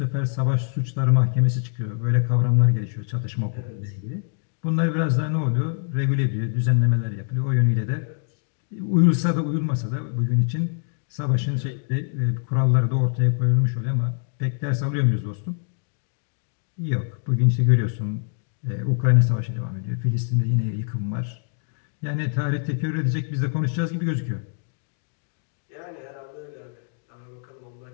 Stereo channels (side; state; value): right; silent; 62 dB below the other